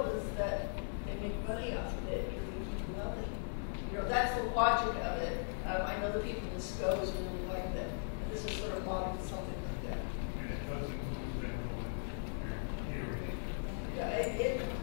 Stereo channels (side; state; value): right; silent; digital silence